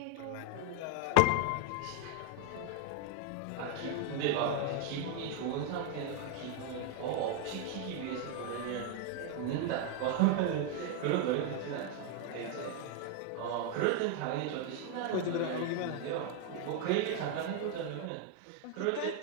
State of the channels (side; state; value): both; different; correlation 0.00